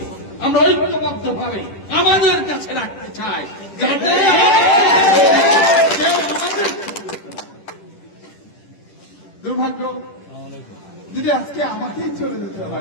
আমরা ঐক্যবদ্ধ ভাবে আমাদের কাছে রাখতে চাই, যাতে কেউ আমাদের দুর্ভাগ্য যদি আজকে আমাকেই চলে যেতে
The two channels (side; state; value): right; late; 10 ms